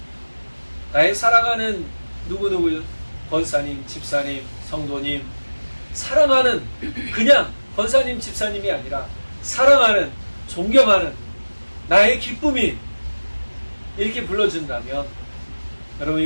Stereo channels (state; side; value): inverted; both; correlation -1.00